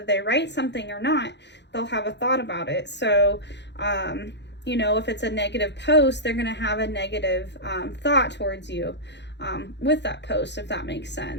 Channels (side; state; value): right; late; 0.51 ms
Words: they write something or not, they'll have a thought about it. So, you know, if it's a negative post, they're going to have a negative thought towards you. With that post, if that makes